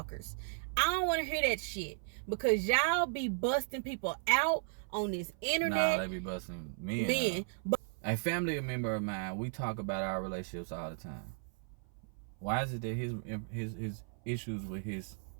I don't want to hear that shit because y'all be busting people out on this internet. Nah, they be busting me out. A family member of mine, we talk about our relationships all the time. Why is it that his issues with his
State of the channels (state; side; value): silent; left; 54 dB below the other